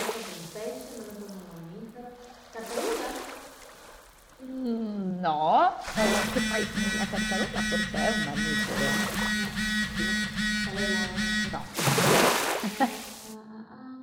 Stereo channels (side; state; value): both; identical; correlation 1.00